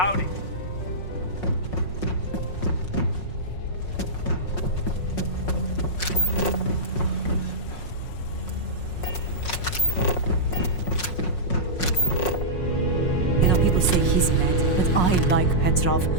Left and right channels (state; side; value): late; right; 5.5 ms